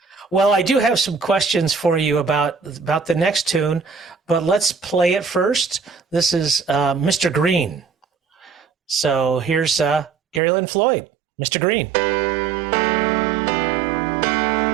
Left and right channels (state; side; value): drops out; left; at 10.4 s